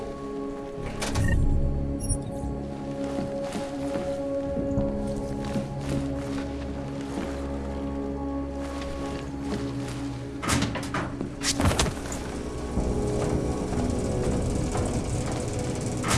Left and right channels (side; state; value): both; identical; correlation 1.00